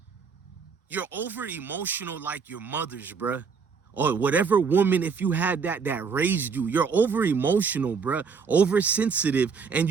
You're over emotional like your mothers, bruh. Or whatever woman, if you had that raised you. You're over emotional, bruh. Oversensitive. And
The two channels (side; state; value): left; quieter; 5.6 dB